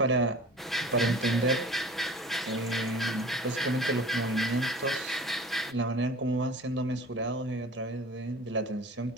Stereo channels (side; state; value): both; normal; correlation 0.42